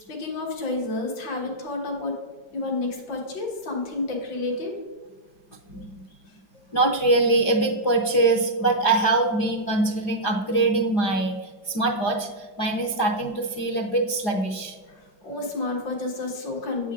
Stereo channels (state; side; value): late; right; 4.9 ms